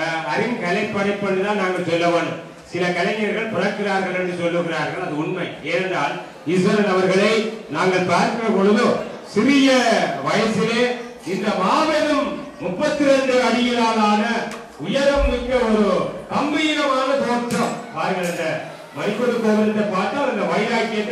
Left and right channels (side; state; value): both; identical; correlation 1.00